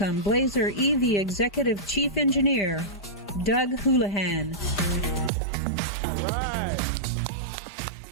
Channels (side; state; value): left; drops out; at 5.3 s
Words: Blazer EV Executive Chief Engineer, Doug Houlihan. All right.